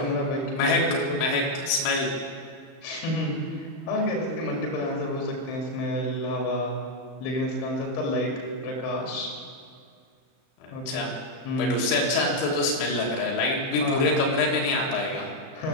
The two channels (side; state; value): right; late; 31 ms